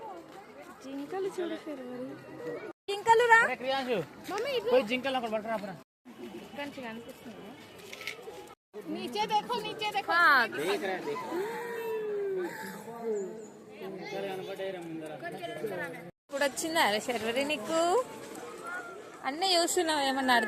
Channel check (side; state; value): both; identical; correlation 1.00